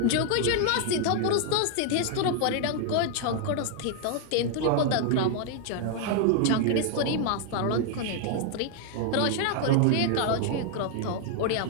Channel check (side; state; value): both; different; correlation 0.00